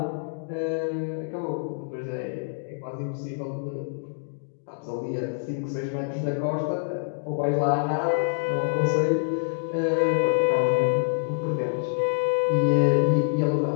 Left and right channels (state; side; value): silent; right; digital silence